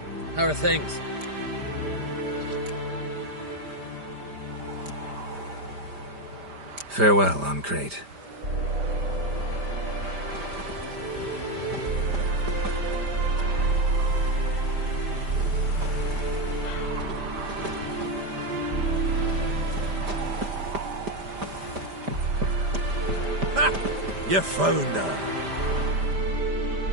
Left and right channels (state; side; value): late; left; 5.0 ms